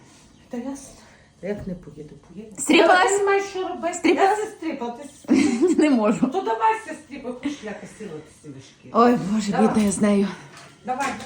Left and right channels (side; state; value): both; identical; correlation 1.00